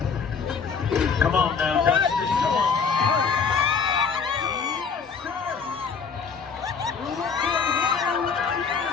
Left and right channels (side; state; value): right; quieter; 5.8 dB